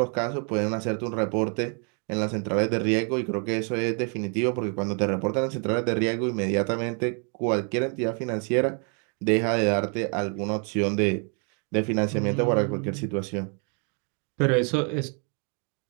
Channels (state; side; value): quieter; left; 39.4 dB